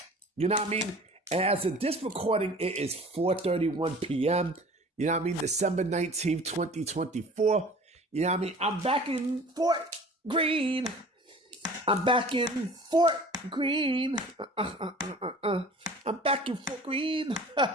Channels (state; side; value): normal; both; correlation 0.45